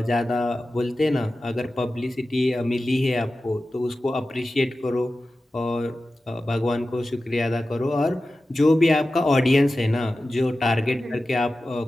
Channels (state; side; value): normal; both; correlation 0.94